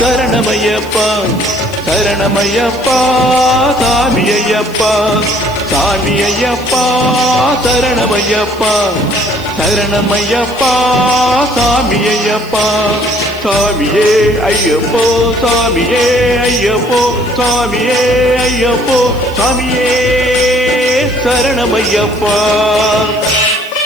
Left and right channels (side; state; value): right; noise; hiss, 21 dB below the sound